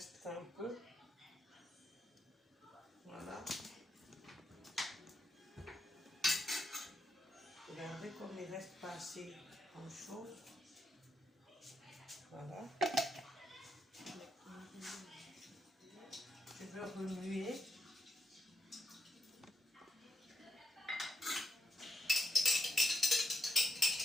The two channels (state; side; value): normal; both; correlation 0.82